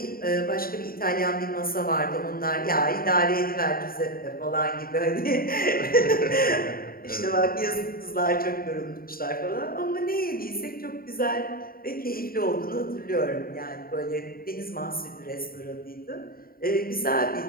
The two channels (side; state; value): right; late; 0.43 ms